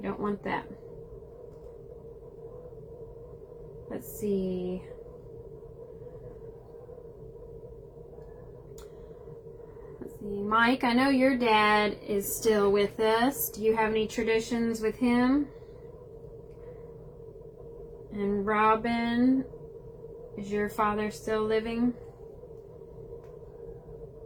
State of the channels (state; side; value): identical; both; correlation 1.00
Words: don't want that. Let's see. Mike, I know your dad is still with us. Do you have any traditions with him? And Robin, is your father still living?